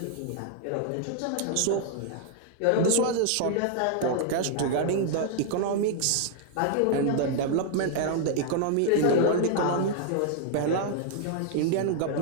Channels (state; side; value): different; both; correlation 0.00